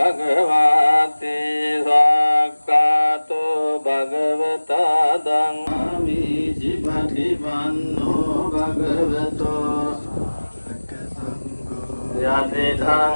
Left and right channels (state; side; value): inverted; both; correlation -1.00